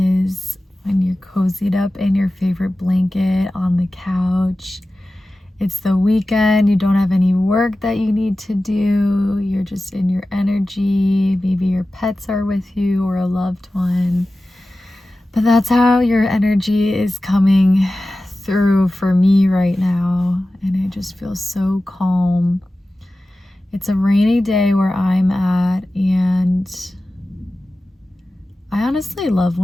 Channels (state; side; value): normal; both; correlation 0.95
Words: when you're cozied up in your favorite blanket on the couch. It's the weekend, you don't have any work that you need to do, you're just in your energy. Maybe your pets are with you or a loved one. But that's how your energy is coming through for me right now, and it just feels so calm. It's a rainy day where I'm at, and I honestly love